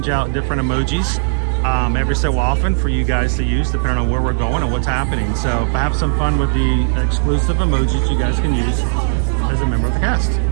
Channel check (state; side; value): silent; left; digital silence